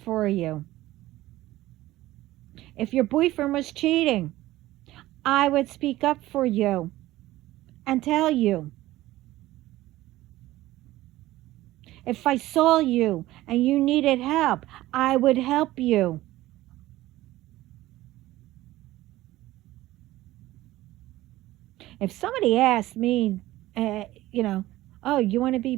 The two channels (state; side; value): quieter; left; 16.5 dB